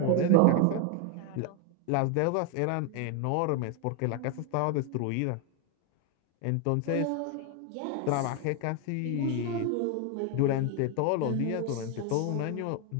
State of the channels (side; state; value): both; different; correlation 0.01